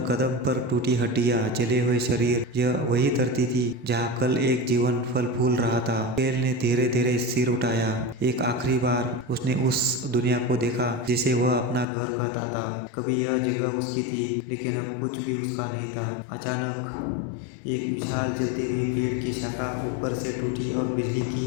कदम पर टूटी हड्डियां, जले हुए शरीर। यह वही धरती थी जहाँ कल एक जीवन फल फूल रहा था। केल ने धीरे धीरे सिर उठाया। एक आखिरी बार उसने उस दुनिया को देखा जिसे वह अपना घर कहता था। कभी यह जगह उसकी थी, लेकिन अब कुछ भी उसका नहीं था। अचानक एक विशाल जलती हुई पेड़ की शाखा ऊपर से टूटी और बिजली की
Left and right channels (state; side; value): drops out; right; at 11.9 s